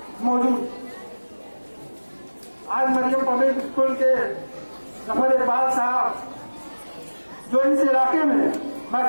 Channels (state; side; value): inverted; both; correlation -1.00